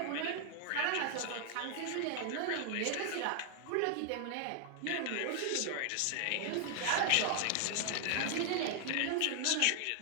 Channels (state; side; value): different; both; correlation 0.00